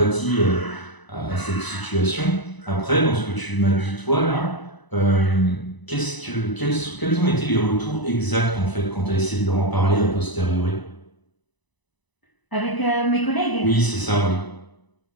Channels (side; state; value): right; late; 1.0 ms